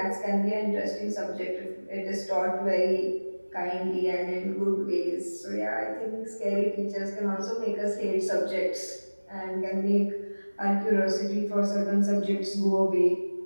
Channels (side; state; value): both; inverted; correlation -1.00